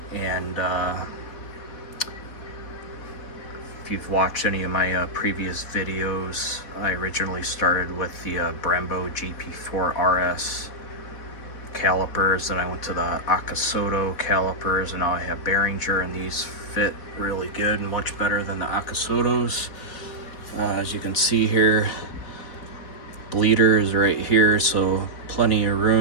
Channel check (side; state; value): right; late; 4.1 ms